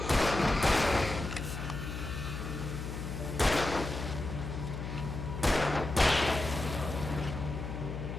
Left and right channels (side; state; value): left; noise; hum, 6 dB below the sound